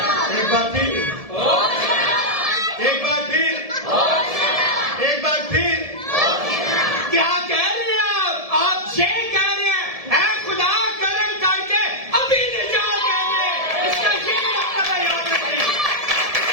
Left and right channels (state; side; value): late; left; 1.7 ms